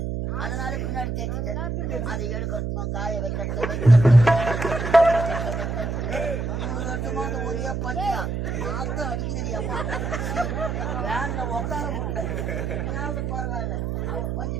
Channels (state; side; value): noise; right; hum, 2 dB below the sound